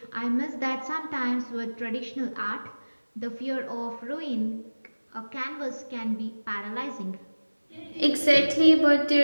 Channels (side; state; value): both; inverted; correlation -1.00